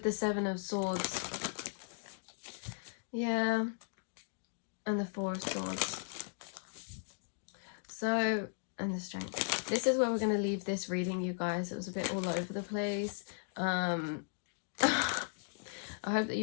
the Seven of Swords, yeah, and the Four of Swords. So, and the Strength. This is where we're going to leave this reading, you guys. It was a bit all over the place. I hope that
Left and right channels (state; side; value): silent; right; digital silence